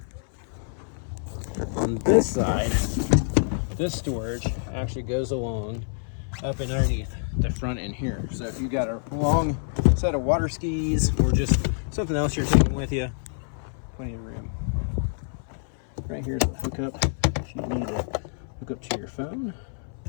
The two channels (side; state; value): right; silent; 59 dB below the other